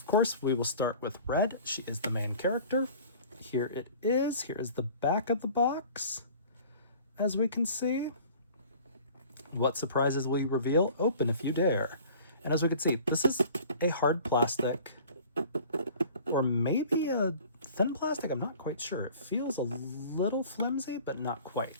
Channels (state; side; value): inverted; both; correlation -0.46